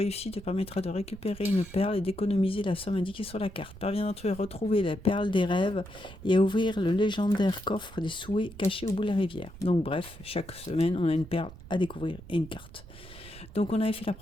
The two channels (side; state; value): right; noise; rumble, 17 dB below the sound